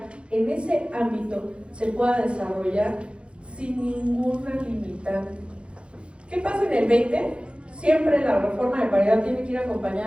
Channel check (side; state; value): left; late; 0.058 ms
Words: en ese ámbito se pueda desarrollar sin ninguna limitante. ¿Qué pasa en el 20? Siempre la reforma de paridad tiene que ir